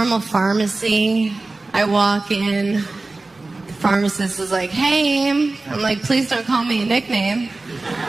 pharmacy. I walk in. The pharmacist is hey. I'm please don't call me a nickname.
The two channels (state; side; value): quieter; left; 3.3 dB